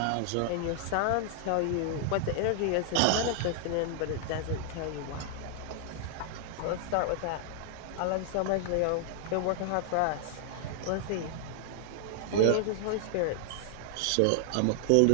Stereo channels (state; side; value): different; both; correlation 0.00